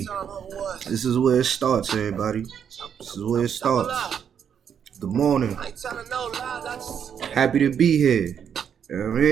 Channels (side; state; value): left; quieter; 8.1 dB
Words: This is where it starts, everybody. This is where it starts. Good morning. Happy to be here. You know what I